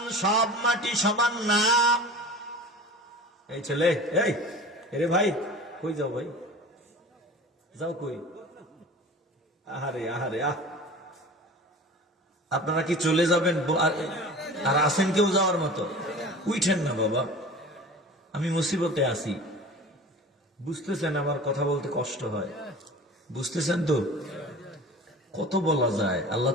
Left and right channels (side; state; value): both; normal; correlation 0.38